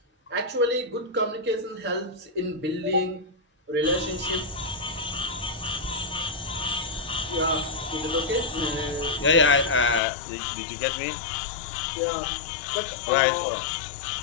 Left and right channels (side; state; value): right; drops out; at 10.0 s